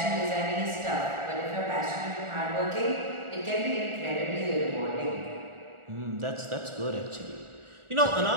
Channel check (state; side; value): late; left; 1.4 ms